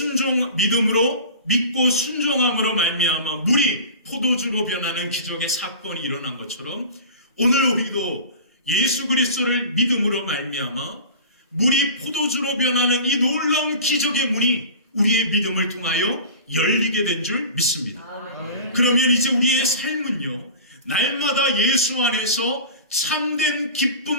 믿고 순종함으로 말미암아 물이 포도주로 변하는 기적의 사건이 일어난 것처럼 오늘 우리도 예수 그리스도를 믿음으로 말미암아 물이 포도주로 변하는 이 놀라운 기적의 문이 우리의 믿음을 통하여 열리게 된 줄 믿습니다. 그러면 이제 우리의 삶은요, 날마다 예수 안에서 참된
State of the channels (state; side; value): inverted; both; correlation -0.37